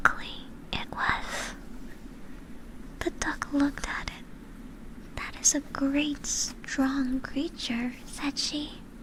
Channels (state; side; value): identical; both; correlation 1.00